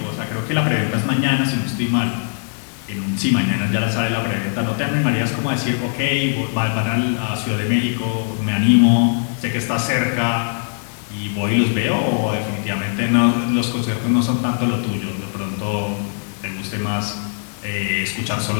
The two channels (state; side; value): silent; right; digital silence